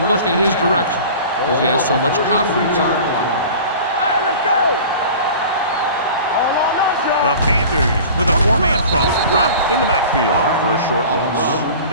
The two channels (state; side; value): inverted; both; correlation -0.40